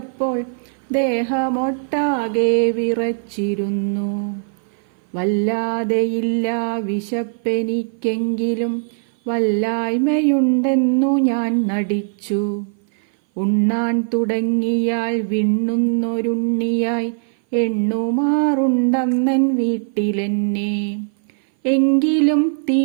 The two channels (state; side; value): silent; left; 58 dB below the other